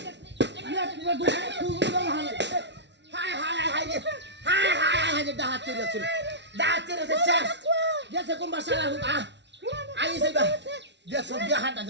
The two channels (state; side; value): late; left; 0.51 ms